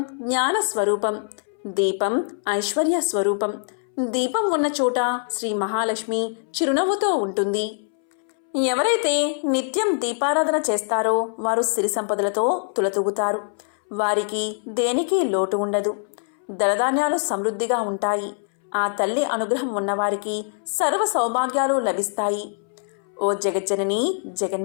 జ్ఞాన స్వరూపం, దీపం ఐశ్వర్య స్వరూపం. దీపం ఉన్న చోట శ్రీ మహాలక్ష్మి చిరునవ్వుతో ఉంటుంది. ఎవరైతే నిత్యం దీపారాధన చేస్తారో వారు సిరి సంపదలతో తులతూగుతారు. వారికి దేనికి లోటు ఉండదు. ధనధాన్యాలు సమృద్ధిగా ఉంటాయి. ఆ తల్లి అనుగ్రహం ఉన్నవారికి సర్వ సౌభాగ్యాలు లభిస్తాయి. ఓ జగజ్జనని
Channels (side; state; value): right; silent; 63 dB below the other